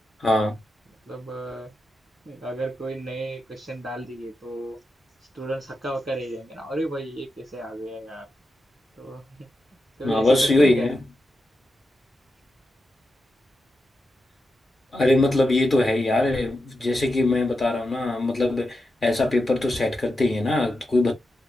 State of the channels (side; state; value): both; normal; correlation 0.88